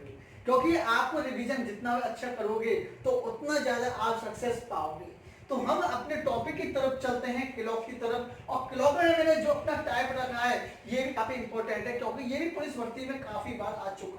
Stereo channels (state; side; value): identical; both; correlation 1.00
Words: हो? क्योंकि आपको रिवीजन जितना अच्छा करोगे तो उतना ज्यादा आप सक्सेस पाओगे। तो हम अपने टॉपिक की तरफ चलते हैं, क्लॉक की तरफ। और क्लॉक में मैंने जो अपना टाइप रखा है ये भी काफी इंपॉर्टेंट है, क्योंकि ये भी पुलिस भर्ती में काफी बार आ